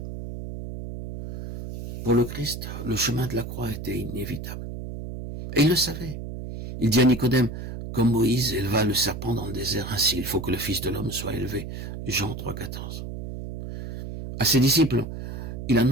Pour le Christ, le chemin de la croix était inévitable. Et il le savait. Il dit à Nicodème, comme Moïse éleva le serpent dans le désert, ainsi il faut que le Fils de l'homme soit élevé. Jean 3, 14. À ses disciples, il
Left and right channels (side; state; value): right; noise; hum, 8 dB below the sound